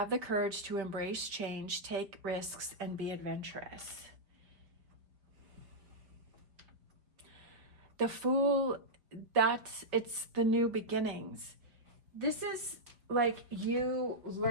the courage to embrace change, take risks, and be adventurous. The Fool, it's the new beginnings. This is like you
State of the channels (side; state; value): left; late; 5.0 ms